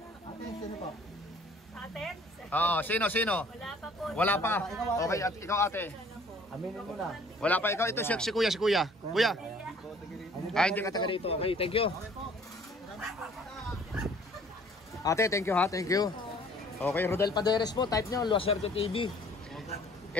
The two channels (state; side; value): normal; both; correlation 0.55